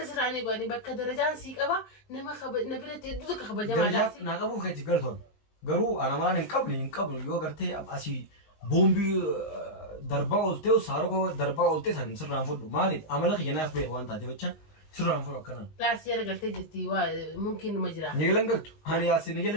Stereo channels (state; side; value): late; right; 19 ms